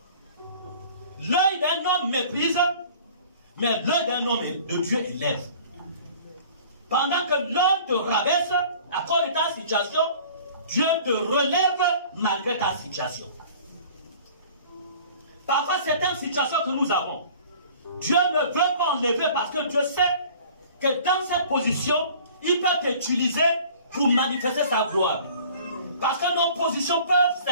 L'œil d'un homme méprise, mais l'œil d'un homme de Dieu élève. Pendant que l'homme te rabaisse à cause de ta situation, Dieu te relève malgré ta situation. Parfois, certaines situations que nous avons, Dieu ne veut pas enlever parce que Dieu sait que dans cette position, il peut t'utiliser pour manifester sa gloire. Parce que nos positions peuvent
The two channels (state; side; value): inverted; both; correlation -0.48